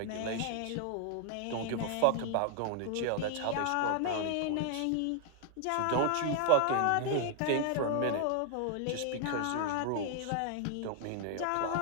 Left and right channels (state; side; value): different; both; correlation 0.00